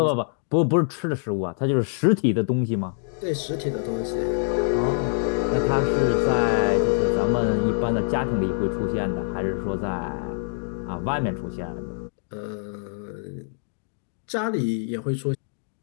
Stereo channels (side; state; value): right; silent; digital silence